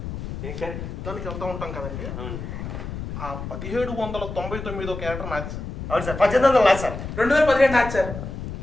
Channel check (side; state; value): left; noise; rumble, 7 dB below the sound